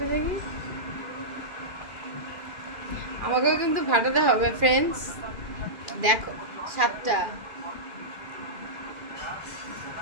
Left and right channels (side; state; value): left; late; 2.4 ms